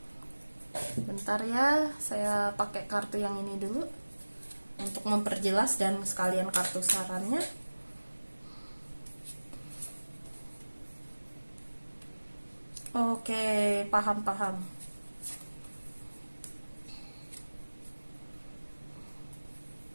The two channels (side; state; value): both; inverted; correlation -1.00